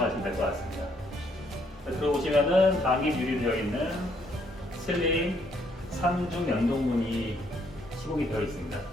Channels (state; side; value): normal; both; correlation 0.70